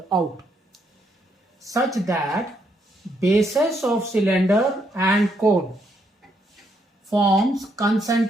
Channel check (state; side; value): normal; both; correlation 0.75